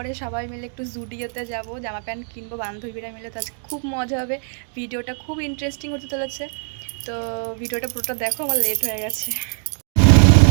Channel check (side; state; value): left; silent; digital silence